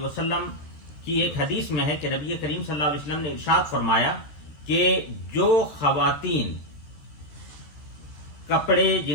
کی ایک حدیث میں ہے کہ نبی کریم صلی اللہ علیہ وسلم نے ارشاد فرمایا کہ جو خواتین کپڑے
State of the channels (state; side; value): late; right; 14 ms